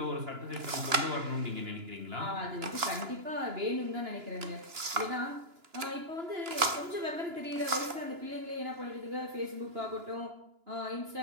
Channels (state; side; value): late; left; 2.9 ms